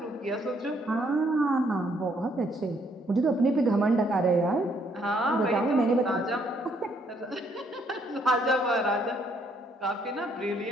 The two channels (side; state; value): both; normal; correlation 0.69